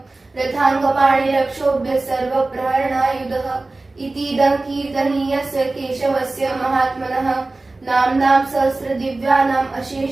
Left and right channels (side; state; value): left; quieter; 3.2 dB